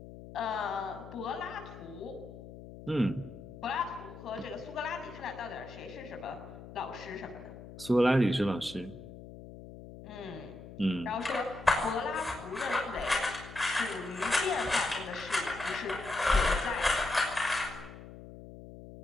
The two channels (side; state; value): left; noise; hum, 14 dB below the sound